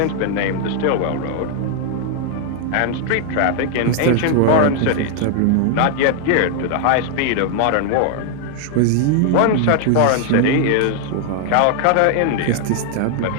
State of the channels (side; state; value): both; different; correlation 0.00